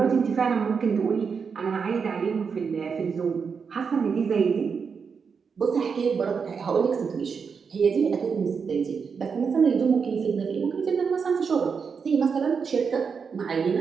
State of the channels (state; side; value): quieter; left; 5.9 dB